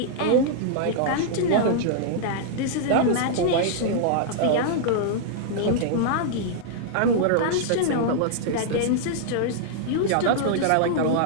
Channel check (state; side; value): different; both; correlation -0.01